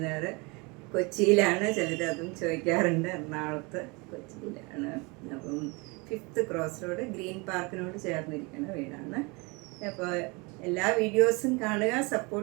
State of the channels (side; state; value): left; quieter; 28.1 dB